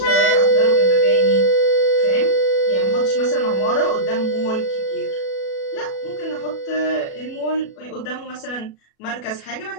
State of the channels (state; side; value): late; right; 37 ms